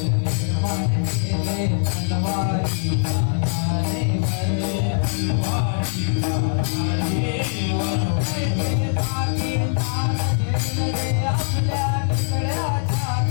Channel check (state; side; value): silent; right; digital silence